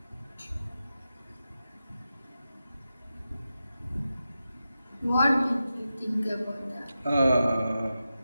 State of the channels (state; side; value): inverted; both; correlation -0.91